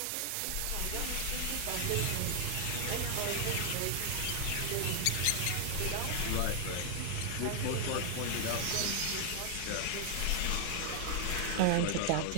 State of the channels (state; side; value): different; both; correlation 0.00